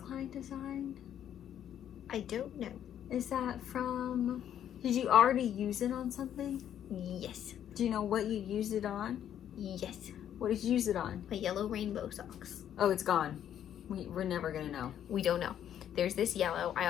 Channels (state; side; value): quieter; right; 10.2 dB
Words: Design? I don't know. Is that from... Did you already use it on something? Yes. Do you know what you used it on? Yes. What did you use it on? My yellow rainbow socks. Oh, it's gone. We're never gonna know. We don't know. There's this yellow. I